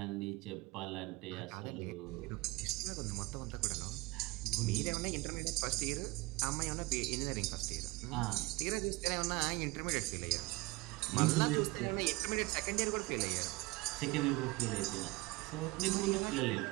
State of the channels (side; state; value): left; quieter; 22.3 dB